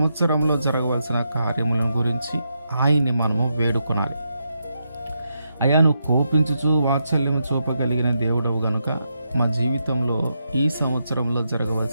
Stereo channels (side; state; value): both; inverted; correlation -0.82